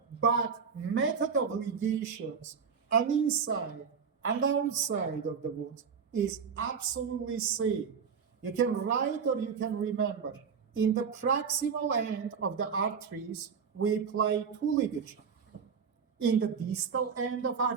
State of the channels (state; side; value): quieter; left; 6.3 dB